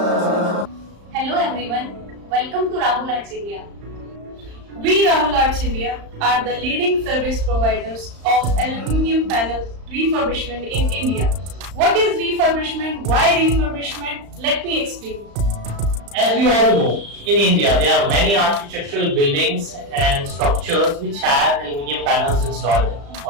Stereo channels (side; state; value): left; late; 35 ms